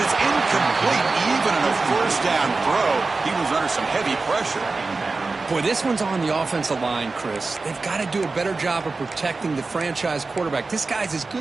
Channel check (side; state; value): left; quieter; 3.8 dB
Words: it's incomplete. Even in a first down throw, he was under some heavy pressure. Boy, this one's on the offensive line, Chris. They've got to do a better job of protecting the franchise quarterback. This guy's as